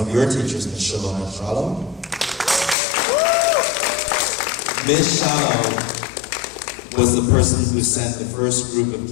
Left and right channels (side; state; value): right; drops out; at 2.8 s